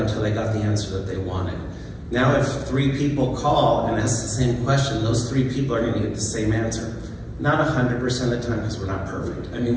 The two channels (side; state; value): both; identical; correlation 1.00